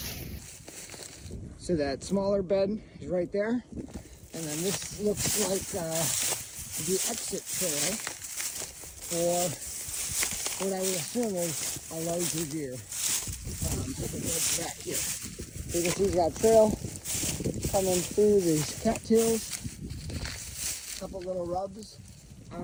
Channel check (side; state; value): both; identical; correlation 1.00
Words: So that smaller bed is right there, and then this looks like the exit trail for what I would assume is a larger deer. Back here, so you can see that trail coming through these cattails. A couple little rubs